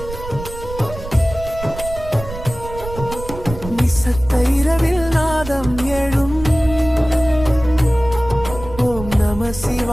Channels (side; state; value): right; noise; rumble, 11 dB below the sound